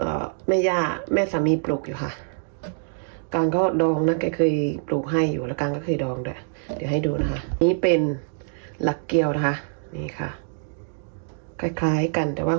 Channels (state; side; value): silent; left; 62 dB below the other